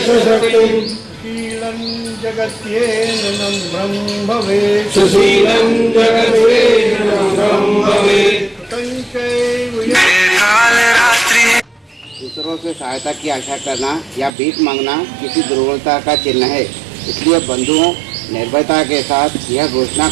च शक्तिम् शीलं जगत्येन नम्रं भवेत् सुशीलं जगत्तेन नम्रं भवेत् तञ्चैव दूसरों से सहायता की आशा करना या भीख मांगना किसी दुर्बलता का चिन्ह है। इसलिए बंधुओं, निर्भयता के साथ यह घोषणा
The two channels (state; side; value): drops out; left; at 14.3 s